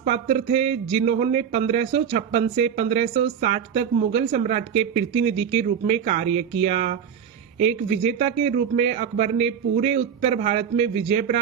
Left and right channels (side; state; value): left; quieter; 7.9 dB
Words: पात्र थे, जिन्होंने 1556 से 1560 तक मुगल सम्राट के प्रतिनिधि के रूप में कार्य किया। एक विजेता के रूप में अकबर ने पूरे उत्तर भारत में विजय